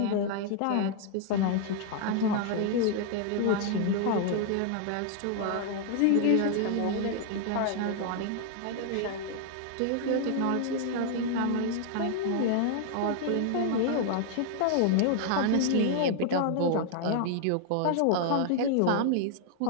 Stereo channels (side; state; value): both; different; correlation 0.00